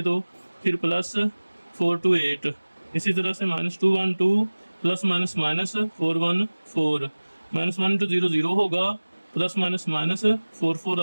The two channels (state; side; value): inverted; both; correlation -1.00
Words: तो फिर प्लस 4 2 8। इसी तरह से -2 1 2 प्लस माइनस -4 1 4, -1 इंटू 0 0 होगा, प्लस माइनस -4 4